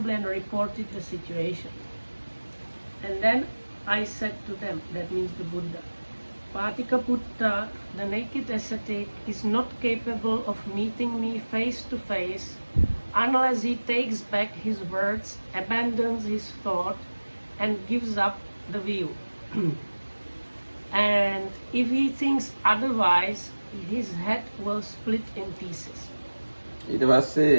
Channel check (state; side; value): inverted; both; correlation -1.00